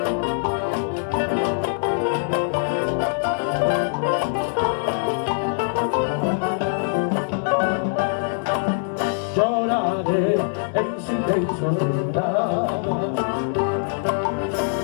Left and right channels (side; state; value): right; silent; digital silence